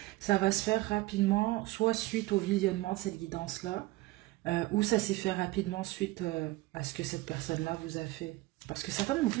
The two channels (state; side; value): quieter; left; 19.5 dB